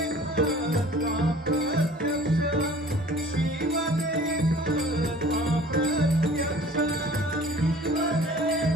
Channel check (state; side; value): normal; both; correlation 0.48